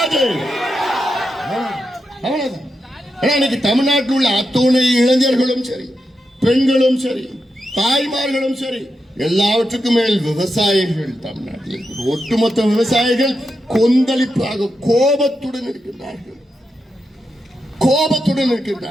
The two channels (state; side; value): normal; both; correlation 0.87